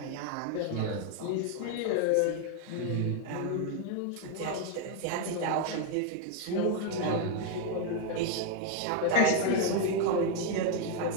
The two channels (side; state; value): both; different; correlation 0.01